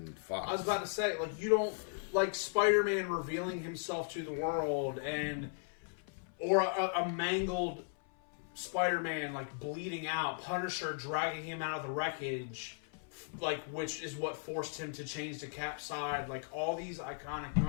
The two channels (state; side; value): silent; right; 53 dB below the other